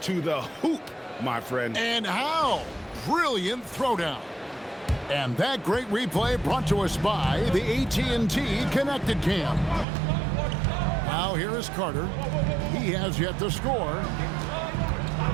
to the hoop, my friend. And how? Brilliant throwdown. And that great replay brought to us by the AT&T Connected Cam. Now here is Carter. He has yet to score.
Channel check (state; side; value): drops out; left; at 9.9 s